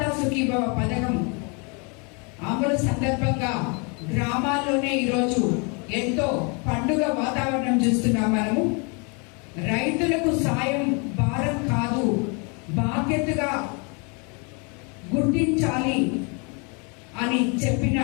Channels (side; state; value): right; quieter; 33.6 dB